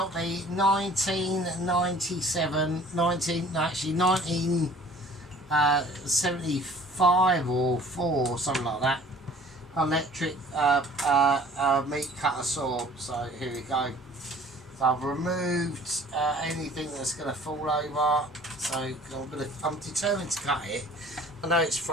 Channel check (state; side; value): normal; both; correlation 0.50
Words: the 1975 or 4 or something like that, electric meat cutter saw. So here we go. So I've removed anything that's going to fall over. So I'm determined to cut it. I know it's